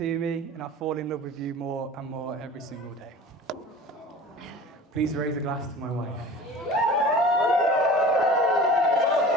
me and I fall in love with you more and more every single day. Please raise a glass to my wife.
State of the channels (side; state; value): both; normal; correlation 0.40